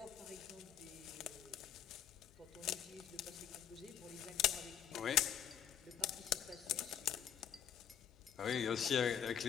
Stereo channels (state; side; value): quieter; right; 9.5 dB